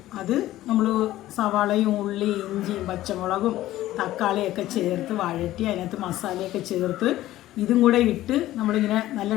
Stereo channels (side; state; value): right; quieter; 15.0 dB